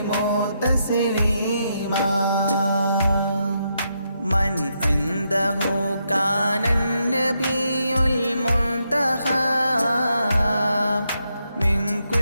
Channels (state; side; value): inverted; both; correlation -0.80